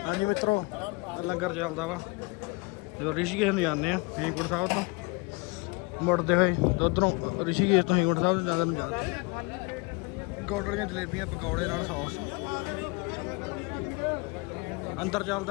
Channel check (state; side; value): quieter; right; 28.9 dB